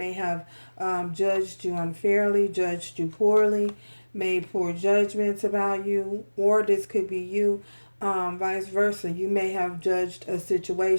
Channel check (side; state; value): both; inverted; correlation -1.00